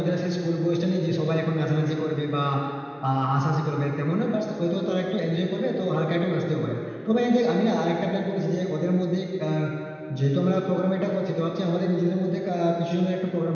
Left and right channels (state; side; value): identical; both; correlation 1.00